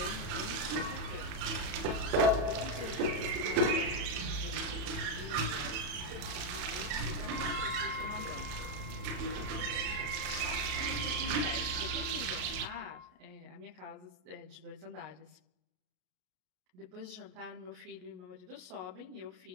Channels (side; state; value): left; late; 34 ms